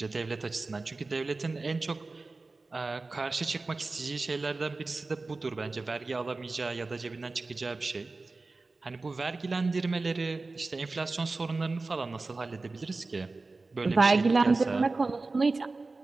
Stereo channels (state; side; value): quieter; left; 3.6 dB